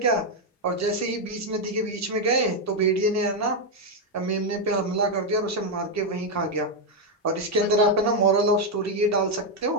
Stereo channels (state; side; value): normal; both; correlation 0.02